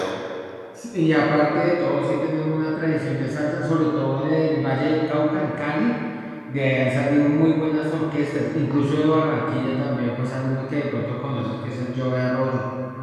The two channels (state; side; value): identical; both; correlation 1.00